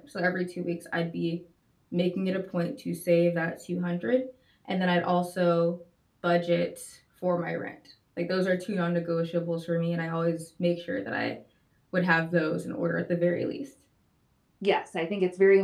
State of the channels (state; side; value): identical; both; correlation 1.00